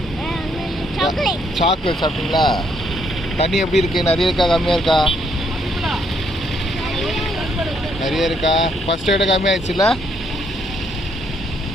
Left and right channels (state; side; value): normal; both; correlation 0.71